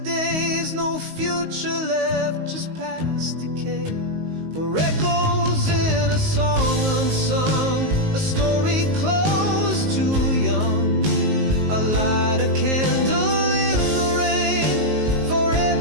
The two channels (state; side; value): late; left; 19 ms